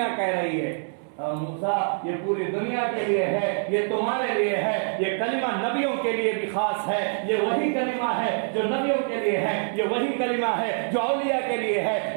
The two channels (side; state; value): left; silent; 61 dB below the other